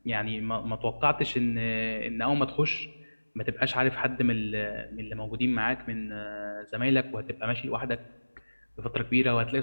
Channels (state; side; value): inverted; both; correlation -1.00